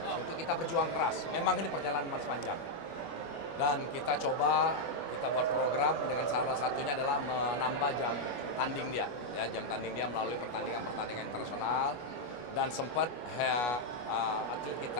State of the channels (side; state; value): right; late; 25 ms